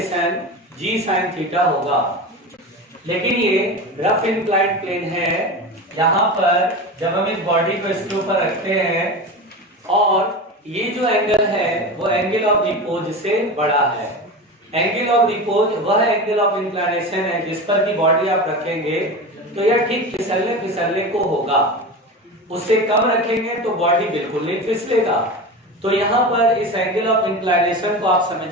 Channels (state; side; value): normal; both; correlation 0.27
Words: g sin थीटा होगा। लेकिन ये रफ इंक्लाइंड प्लेन है, यहां पर जब हम इस बॉडी को इसके ऊपर रखते हैं और ये जो एंगल है वो एंगल ऑफ रिपोज से बड़ा है। एंगल ऑफ रिपोज वह एंगल ऑफ इंक्लिनेशन है जिस पर की बॉडी आप रखेंगे तो यह ठीक फिसलने फिसलने को होगा, उससे कम रखेंगे तो बॉडी बिल्कुल नहीं फिसलेगा। तो यहाँ पर इस एंगल ऑफ इंक्लिनेशन को आप